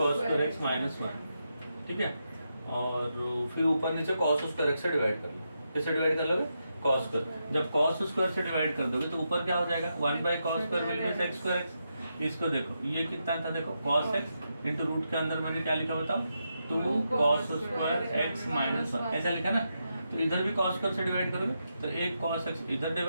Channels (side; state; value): both; inverted; correlation -0.85